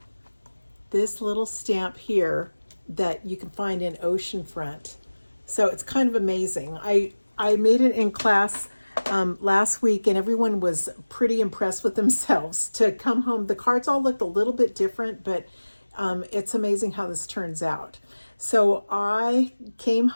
this little stamp here that you can find in Oceanfront. So it's kind of amazing. I made it in class last week, and everyone was pretty impressed with themselves to come home. The cards all looked a little bit different, but it's amazing how this turns out. So I came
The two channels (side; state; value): both; inverted; correlation -1.00